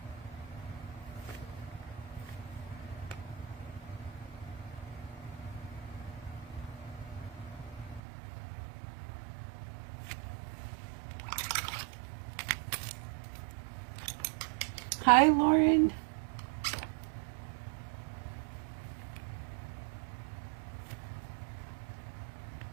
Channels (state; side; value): drops out; left; at 8.0 s